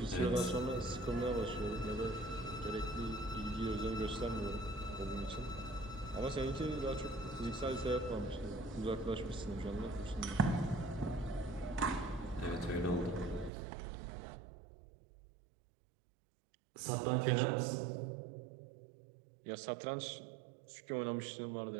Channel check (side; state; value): left; drops out; at 13.5 s